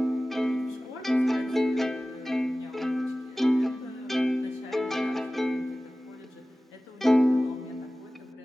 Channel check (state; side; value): normal; both; correlation 0.97